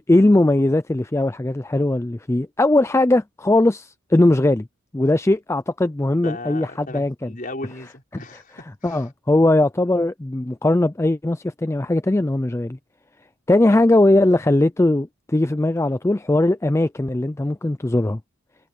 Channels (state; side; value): normal; both; correlation 0.90